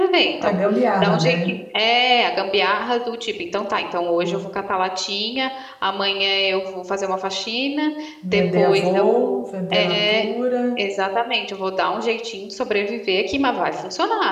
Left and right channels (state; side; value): identical; both; correlation 1.00